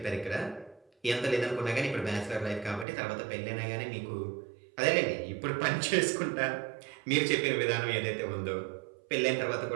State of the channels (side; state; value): left; drops out; at 2.9 s